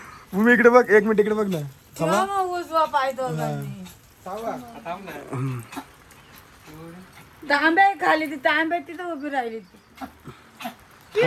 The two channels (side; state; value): both; identical; correlation 1.00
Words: भूमी इकडे बघ, 1 मिनिट इकडे बघ ना. तांब्या खाली ती तांब्या तिथं उभी राहिली.